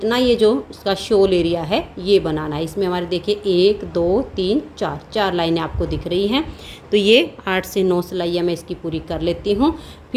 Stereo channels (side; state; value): both; identical; correlation 1.00